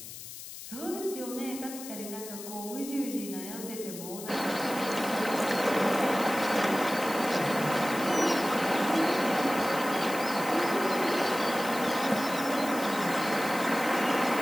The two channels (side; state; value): left; noise; hiss, 12 dB below the sound